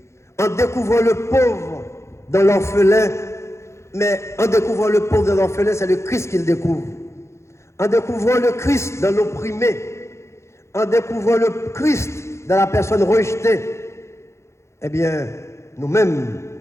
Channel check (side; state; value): right; late; 0.13 ms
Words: en découvrant le pauvre dans l'orphelin, mais en découvrant le pauvre dans l'orphelin, c'est le Christ qu'il découvre. En découvrant le Christ dans l'opprimé, en découvrant le Christ dans la personne rejetée, eh bien, nous-mêmes,